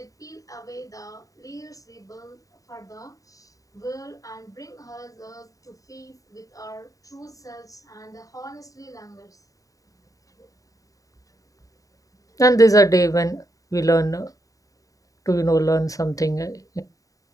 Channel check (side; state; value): right; late; 0.16 ms